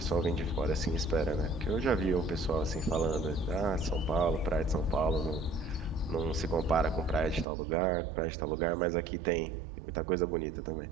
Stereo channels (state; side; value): drops out; left; at 7.5 s